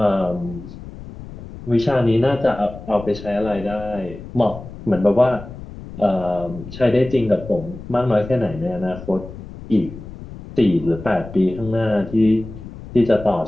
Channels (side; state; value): left; noise; rumble, 14 dB below the sound